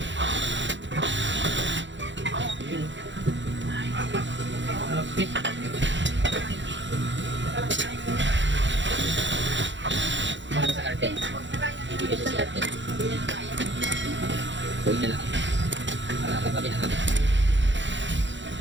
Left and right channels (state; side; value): late; left; 0.54 ms